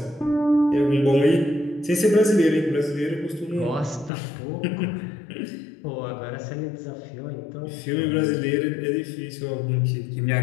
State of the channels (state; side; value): drops out; right; at 4.1 s